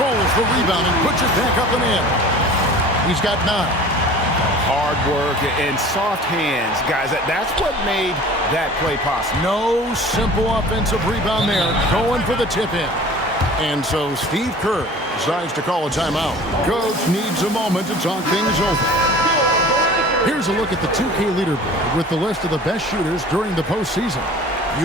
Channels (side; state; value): both; normal; correlation 0.43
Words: the rebound and puts it back up and in. He's got 9. Hard work and soft hands, guys. That's what made that play possible. No simple offensive rebound there. Going for the tip-in. And so Steve Kerr decides to call a timeout. Coach needs a moment to talk things over. Here's a look at the 2K leaderboard with the list of the best shooters during the postseason.